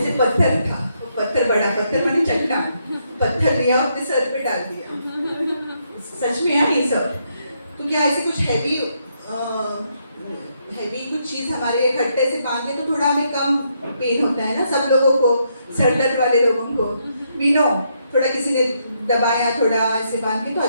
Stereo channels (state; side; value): inverted; both; correlation -0.77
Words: से पत्थर था, पत्थर बड़ा पत्थर मानी चट्टान, पत्थर लिया अपने सर पे डाल दिया। सच में यार ये सब, तो क्या ऐसे कुछ हैवी कुछ चीज़ हमारे खट्टे से बांधे तो थोड़ा हमें कम पेन होता है ना, सब लोगों को, सर दर्द वाले लोगों को वी नो, थोड़ा किसी ने दबाया थोड़ा ऐसे बांध के तो